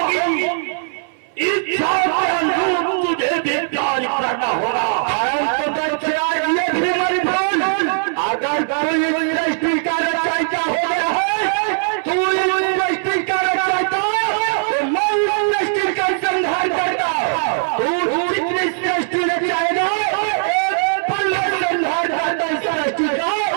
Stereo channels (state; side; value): silent; left; 61 dB below the other